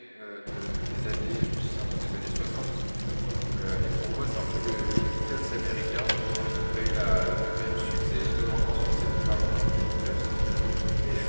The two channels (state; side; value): inverted; both; correlation -1.00